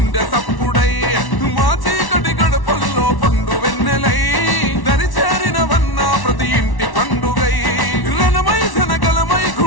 సప్పుడై మా చీకటి గడపల్లో పండు వెన్నెలై దరిచేరినవన్న ప్రతి ఇంటి పండుగై రణమై జనగలమై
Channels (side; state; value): right; late; 1.1 ms